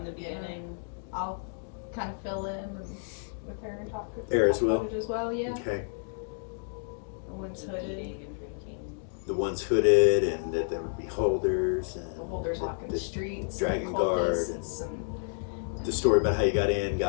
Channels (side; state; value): right; silent; digital silence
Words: the beginning. I'll kind of fill in and with her and talk with Air as her well? as well, yeah. Okay. The one's And hooded. eating and drinking. The ones hooded, and that there would be holders, and The holders walking the streets. Dragon and Guard, cultists and the story about how you got in,